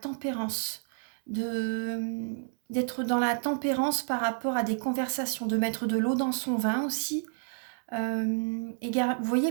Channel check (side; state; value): left; silent; 58 dB below the other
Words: d'être dans la tempérance par rapport à des conversations, de mettre de l'eau dans son vin aussi. Vous